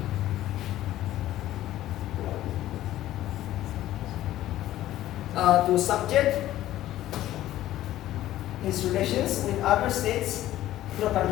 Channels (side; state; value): right; quieter; 14.0 dB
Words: his relations with other states to the